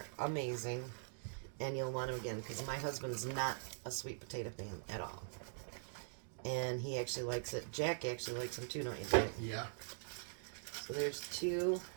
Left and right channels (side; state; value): left; silent; digital silence